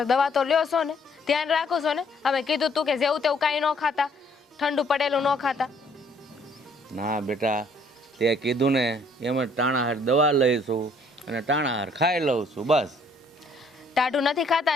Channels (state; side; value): normal; both; correlation 0.63